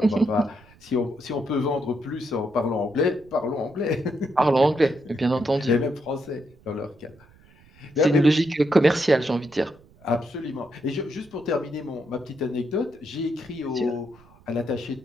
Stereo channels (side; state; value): right; noise; rumble, 27 dB below the sound